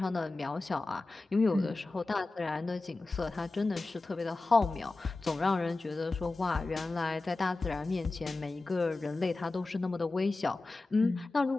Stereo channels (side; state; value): right; quieter; 3.2 dB